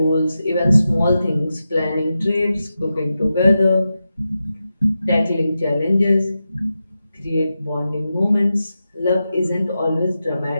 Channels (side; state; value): both; inverted; correlation -0.90